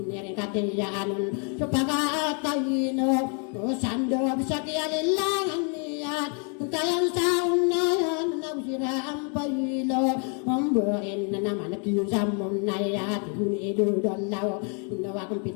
nirin katiyanon supakatayino usando bisa kiyalilangan niyan kayang sa unayan na usira ang payilo ombain na naman nakiyong sa munaya tihuni idudalaw inawa kong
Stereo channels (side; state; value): right; quieter; 39.2 dB